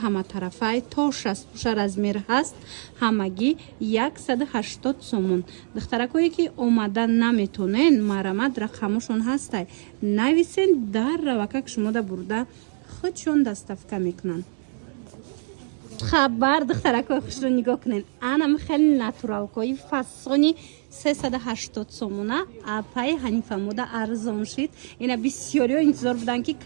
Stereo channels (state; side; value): silent; left; 57 dB below the other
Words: ҳаматарафай то 60 пӯша размер ҳаст. Ҳамагӣ 180 сомон. Духтаракое ки омада наметонен марамат рақамошон ҳастай. Нависен дар равакак шумода бурда худшон доставка мекунанд. хабар духтаракои хушрӯ нигоҳ кунен. Анам хеле натуралкои фасони 380 сомона апаи Ҳанифамода арзон шид. Ина бисёриҳо интизор буданд ки